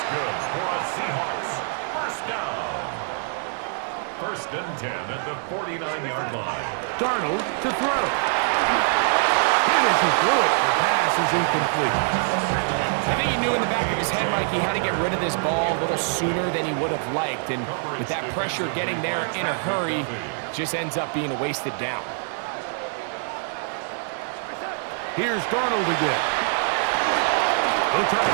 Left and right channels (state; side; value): silent; left; 62 dB below the other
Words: good for a Seahawks first down. First and 10 at the 49-yard line. Darnold to throw. Hit as he threw it. The pass is incomplete. I think he knew in the back of his head, Mike, he had to get rid of this ball a little sooner than he would have liked. And with that pressure getting there in a hurry, just ends up being a wasted down. Here's Darnold again. They'll try